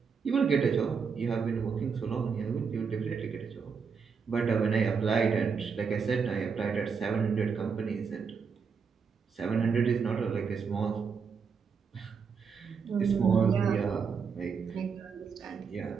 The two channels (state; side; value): quieter; left; 5.9 dB